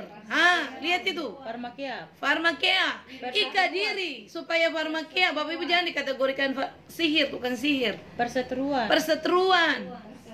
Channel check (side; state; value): both; identical; correlation 1.00